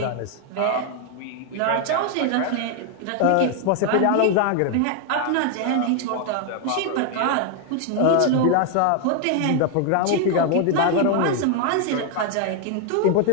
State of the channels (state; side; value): different; both; correlation 0.00